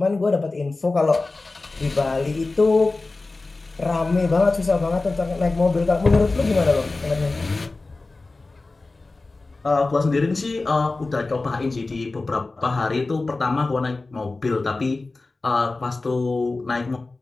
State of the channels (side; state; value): right; quieter; 3.4 dB